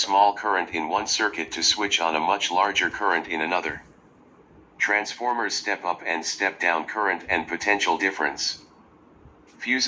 current in one circuit to switch on a much larger current in another. Transformers step up and step down current and potential difference.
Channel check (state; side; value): identical; both; correlation 1.00